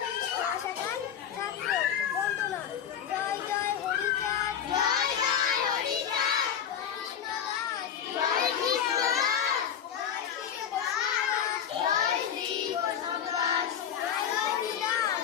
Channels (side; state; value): right; quieter; 8.8 dB